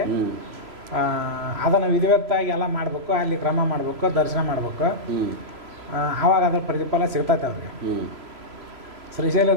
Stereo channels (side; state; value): left; late; 3.0 ms